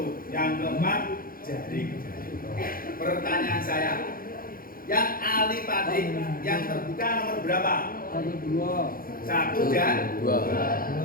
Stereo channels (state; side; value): late; right; 0.42 ms